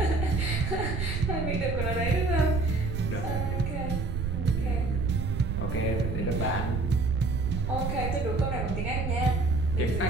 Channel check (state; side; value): noise; right; rumble, 2 dB below the sound